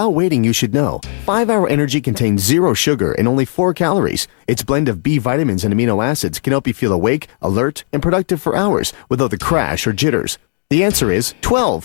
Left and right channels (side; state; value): right; silent; digital silence